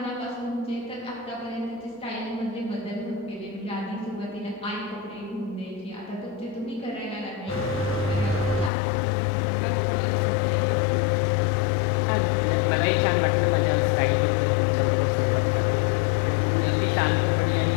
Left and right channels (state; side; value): drops out; right; at 8.7 s